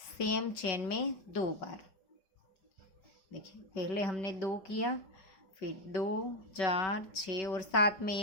चेन में 2 बार। देखिए पहले हमने 2 किया, फिर 2, 4, 6 और 7 में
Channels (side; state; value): right; late; 5.3 ms